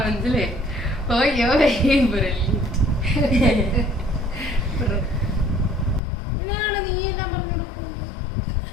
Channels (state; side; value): drops out; right; at 6.0 s